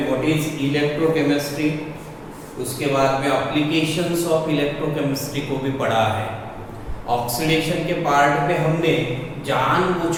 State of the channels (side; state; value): both; identical; correlation 1.00